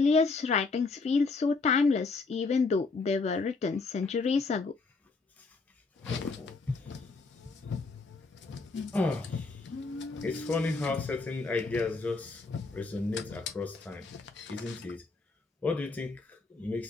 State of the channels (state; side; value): quieter; right; 4.0 dB